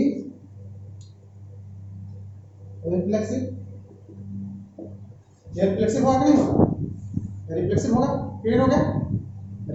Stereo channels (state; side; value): identical; both; correlation 1.00